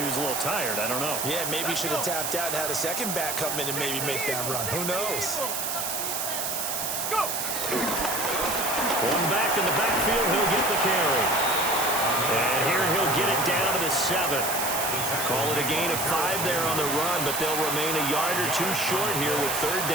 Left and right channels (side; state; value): right; noise; hiss, 2 dB below the sound